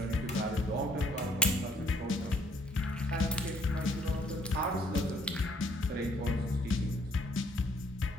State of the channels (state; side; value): normal; both; correlation 0.64